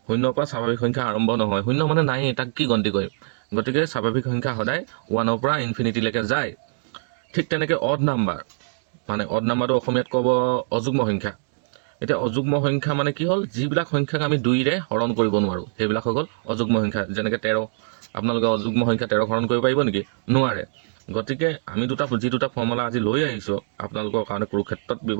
শূন্যৰ পৰা স্বাভাৱিক সংখ্যা আৰম্ভ নহয়। শূন্য মানে নাই, তাক কি গন্তি কৰিম? গতিকে স্বাভাৱিক সংখ্যা সদায় 1ৰ পৰা ইনফিনিটিলৈকে যায়। ঠিক তেনেকৈ অড নাম্বাৰ মানে অড নাম্বাৰটো অসমীয়াত ক'ব অযুগ্ম সংখ্যা। এতিয়া অযুগ্ম সংখ্যা মানে কি হ'ল? যিবিলাক সংখ্যাক আমি 2ৰে হৰণ কৰিব নোৱাৰোঁ সেইবিলাক হৈ গ'ল অযুগ্ম সংখ্যা। যেনেকৈ 13, আপোনালোকে অযুগ্ম সংখ্যা 13 হৰণ কৰিব পাৰিব নেকি? নোৱাৰে। গতিকে আমি যি দুটা ফৰ্মুলা আজি লৈ আহিছোঁ আপোনালোকৰ কাৰণে কুৰুক্ষেত্ৰত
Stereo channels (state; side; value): silent; left; digital silence